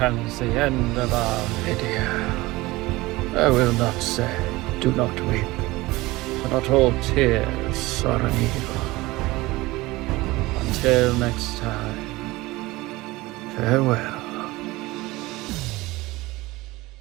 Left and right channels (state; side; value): quieter; left; 20.2 dB